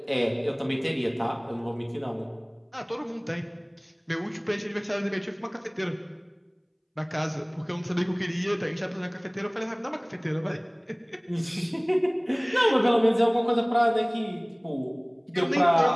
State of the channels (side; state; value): both; identical; correlation 1.00